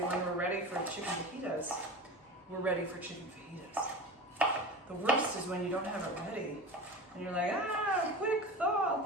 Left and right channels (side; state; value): both; normal; correlation 0.30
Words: we're ready for chicken fajitas, we're ready for chicken fajitas. The worst is when you don't have it ready and you're like, quick thaw.